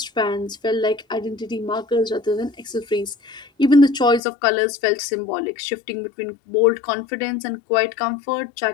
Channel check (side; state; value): right; drops out; at 4.2 s